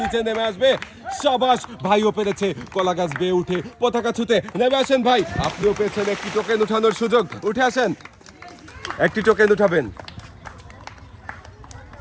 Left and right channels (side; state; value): both; identical; correlation 1.00